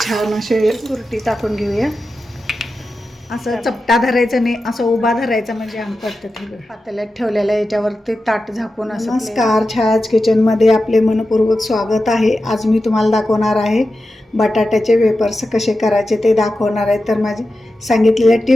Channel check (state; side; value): normal; both; correlation 0.92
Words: असे तुरटी टाकून घेऊया. असं चपटा धरायचं नाही, असं उभा धरायचं म्हणजे आमचं पातेल्यात ठेवलेलं याच्यावरती ताट झाकून असं. नमस्कार, छायाज किचनमध्ये आपले मनपूर्वक स्वागत आहे. आज मी तुम्हाला दाखवणार आहे बटाट्याचे वेपर्स कसे करायचे ते दाखवणार आहे. तर माझे सांगितलेल्या